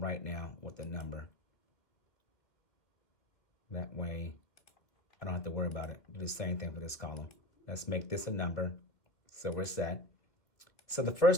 now with a number. That way, I don't have to worry about it. Do the same thing for this column. Let's make this a number. So we're set. So the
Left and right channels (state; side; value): late; right; 2.3 ms